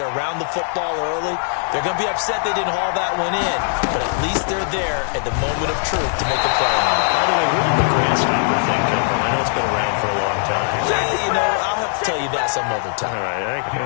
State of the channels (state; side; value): silent; right; digital silence